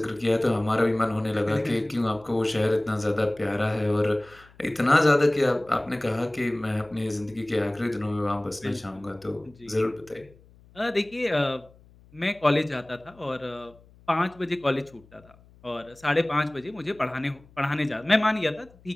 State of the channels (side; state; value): left; noise; hum, 26 dB below the sound